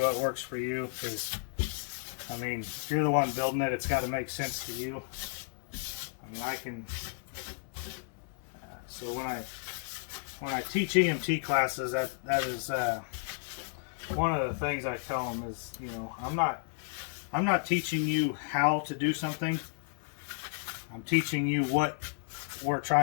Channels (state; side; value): silent; right; 55 dB below the other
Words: works for you. Because I mean, if you're the one building it, it's got to make sense to you. I mean, I can. So when I teach EMT classes, that is one of the things I tell them is, you know, I'm not teaching you how to do something. I'm teaching you what we're